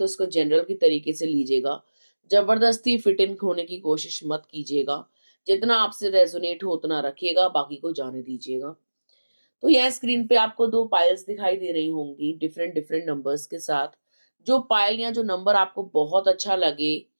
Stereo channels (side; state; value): both; inverted; correlation -1.00